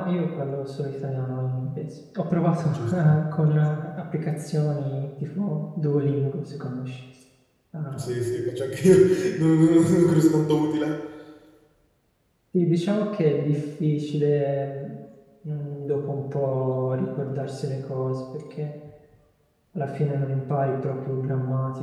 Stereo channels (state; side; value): identical; both; correlation 1.00